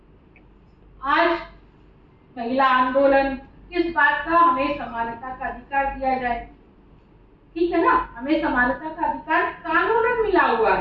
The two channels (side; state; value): both; identical; correlation 1.00